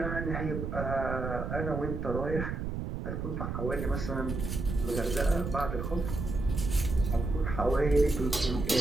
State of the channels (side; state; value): right; noise; rumble, 4 dB below the sound